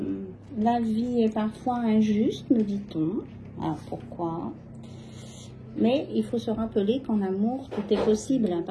la vie est parfois injuste, me dit-on. Alors, pourquoi? Mais il faut se rappeler qu'en amour, tout est possible à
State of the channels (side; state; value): both; identical; correlation 1.00